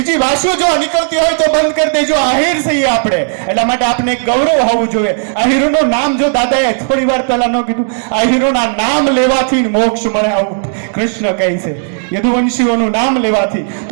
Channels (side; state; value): left; silent; digital silence